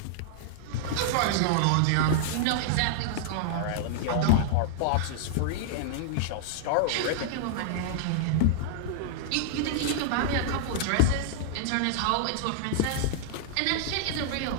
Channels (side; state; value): both; different; correlation -0.01